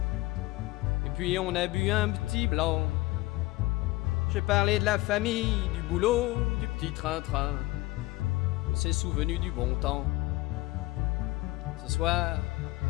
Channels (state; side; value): quieter; right; 20.0 dB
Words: Et puis on a bu un petit blanc. J'ai parlé de la famille, du boulot, du petit train-train. On s'est souvenu du bon temps. Ce soir,